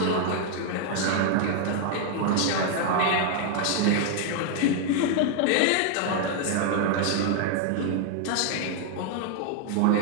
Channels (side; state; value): both; different; correlation 0.00